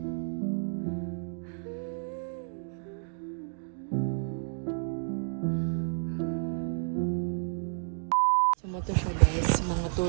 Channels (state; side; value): silent; left; 57 dB below the other